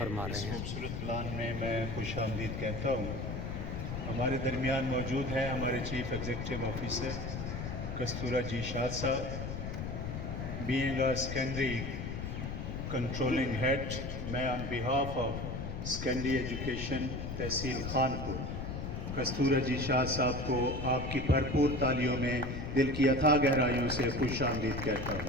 رہے ہیں۔ خوبصورت پلان میں میں خوش آمدید کہتا ہوں۔ ہمارے درمیان موجود ہیں ہمارے chief executive officer Kastura ji Shah صاحب۔ Being a secondary controlling head, میں on behalf of secondary education تحصیل خانپور کستورہ جی شاہ صاحب کو آپ کی بھرپور تالیوں میں دل کی اتھاہ گہرائیوں سے خوش آمدید کہتا ہوں۔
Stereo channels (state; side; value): noise; left; rumble, 5 dB below the sound